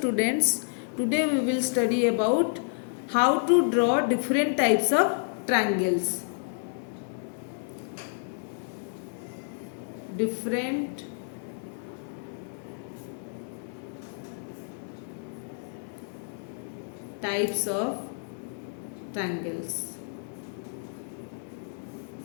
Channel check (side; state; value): right; silent; digital silence